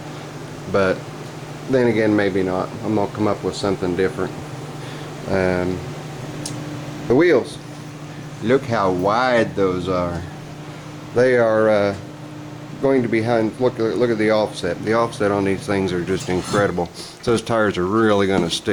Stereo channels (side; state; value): both; identical; correlation 1.00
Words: but then again maybe not. I'm going to come up with something different. The wheels, look how wide those are. They are going to be look at the offset. The offset on these things are just incredible. So those tires are really going to